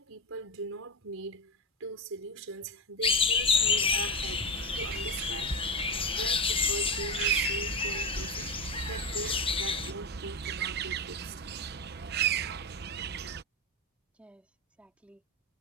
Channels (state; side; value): normal; both; correlation 0.17